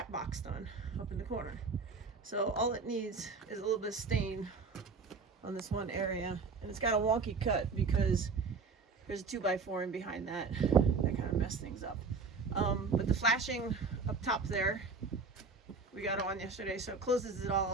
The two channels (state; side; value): quieter; left; 4.5 dB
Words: box done up in the corner. So all it needs is a little bit of stain on this one area, and it's got a wonky cut because there's a 2x4 in behind that. That kind of messed things up. But the flashing up top there, we got on yesterday, so it closes it all